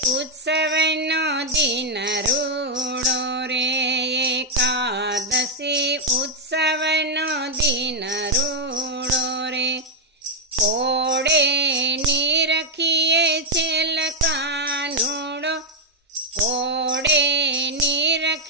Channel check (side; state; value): both; normal; correlation -0.01